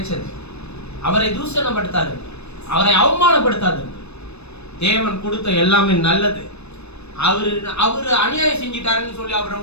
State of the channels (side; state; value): right; late; 0.80 ms